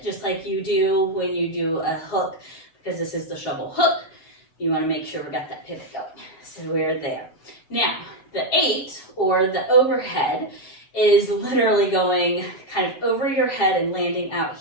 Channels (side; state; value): right; late; 7.4 ms